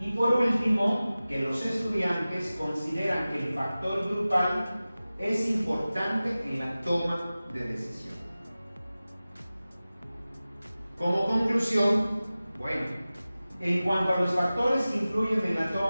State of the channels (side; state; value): both; inverted; correlation -0.96